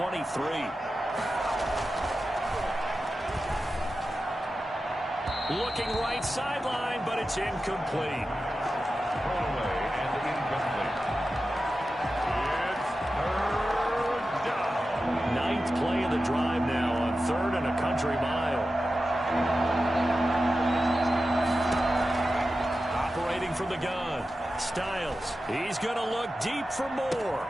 Looking right sideline, but it's incomplete. Thrown away and incomplete. It's 3rd down. 9th play of the drive now on 3rd and a country mile. Operating from the gun. Styles. He's going to look deep for more.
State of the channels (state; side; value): normal; both; correlation 0.92